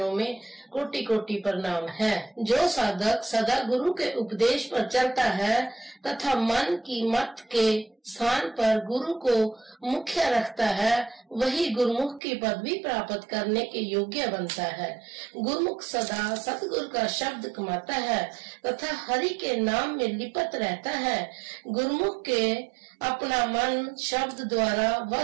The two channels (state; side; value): drops out; left; at 12.2 s